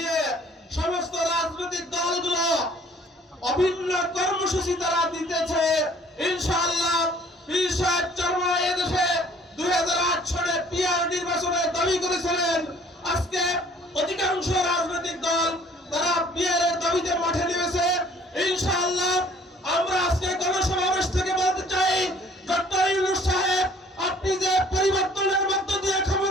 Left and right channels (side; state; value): both; normal; correlation 0.55